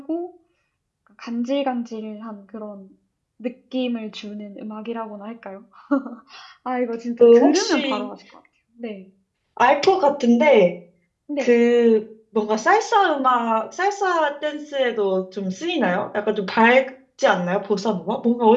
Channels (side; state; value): both; identical; correlation 1.00